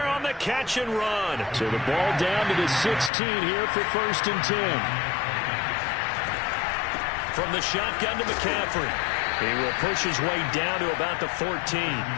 on the catch and run. So the ball down to the 16 here for 1st and 10. From the shotgun to McCaffrey. He will push his way down to about the 14.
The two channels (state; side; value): drops out; right; at 3.1 s